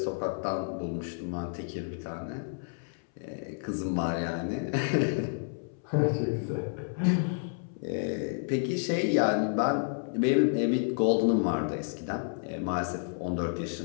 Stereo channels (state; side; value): silent; right; 58 dB below the other